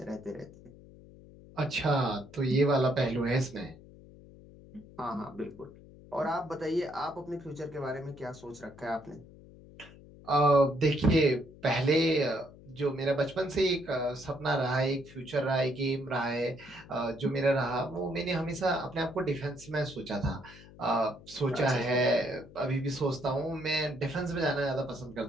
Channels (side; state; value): left; noise; hum, 20 dB below the sound